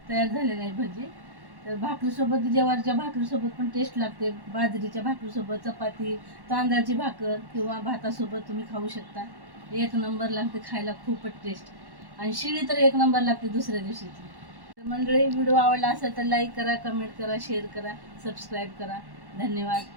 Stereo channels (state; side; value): late; left; 1.1 ms